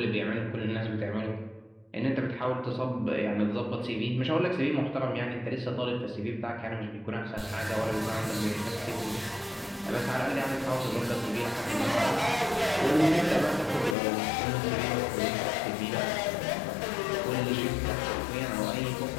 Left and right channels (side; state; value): right; drops out; at 14.0 s